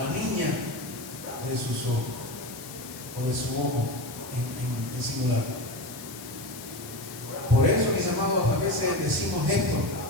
la niña de sus ojos, o de su ojo en singular. Por eso, mis amados, a veces decimos esto.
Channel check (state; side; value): noise; left; hiss, 13 dB below the sound